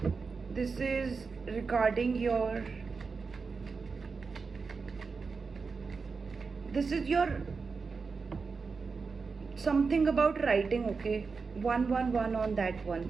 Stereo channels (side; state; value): left; quieter; 4.8 dB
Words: this is regarding your, this is your something about writing. Okay, 111 on that one,